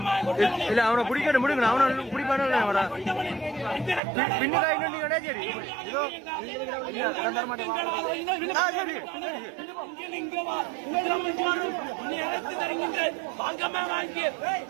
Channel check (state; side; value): drops out; left; at 4.0 s